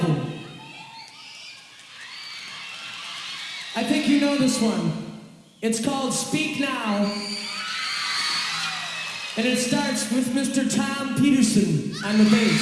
I think you know this one. It's called Speak Now. And it starts with Mr. Tom Peterson on the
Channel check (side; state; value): both; identical; correlation 1.00